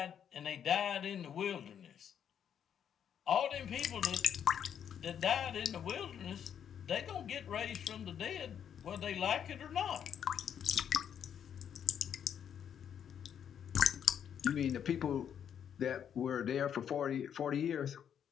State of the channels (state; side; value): quieter; right; 8.7 dB